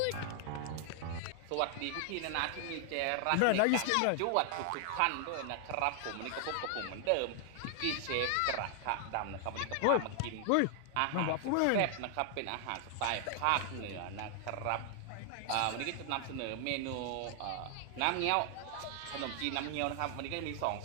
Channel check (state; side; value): different; both; correlation 0.00